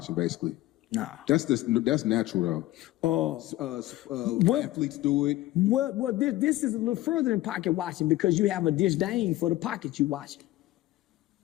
basically? Nah. That's natural though. Athletes do it. Well, this is a little further than pocket watching because you have a disdain for the pocket you watching.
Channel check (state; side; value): quieter; right; 16.6 dB